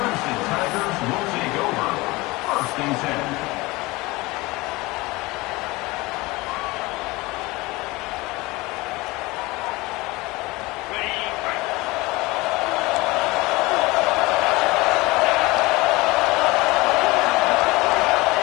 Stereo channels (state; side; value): quieter; right; 22.1 dB